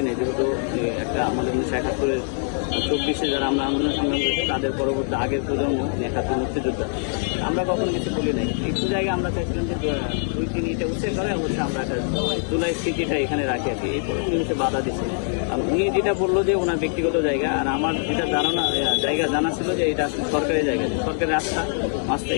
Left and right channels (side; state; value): right; silent; 57 dB below the other